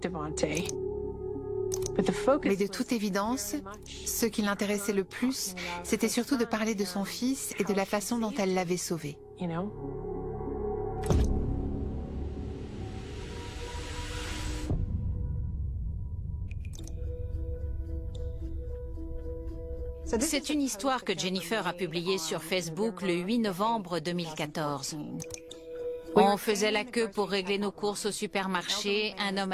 Mais de toute évidence, ce qui l'intéressait le plus, c'était surtout de parler de son fils et de la façon dont elle l'avait sauvé. C'est une histoire que Jennifer a publiée sur Facebook le 8 novembre 2014. On faisait la queue pour régler nos courses au supermarché, un homme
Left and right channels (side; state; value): both; identical; correlation 1.00